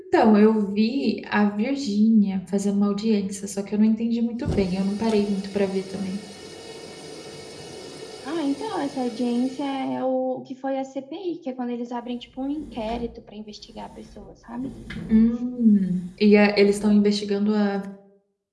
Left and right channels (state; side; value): identical; both; correlation 1.00